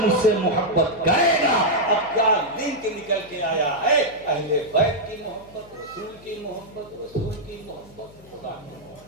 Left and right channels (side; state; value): left; noise; hum, 24 dB below the sound